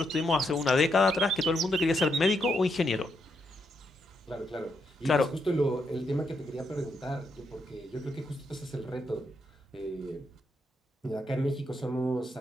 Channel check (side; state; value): both; normal; correlation 0.79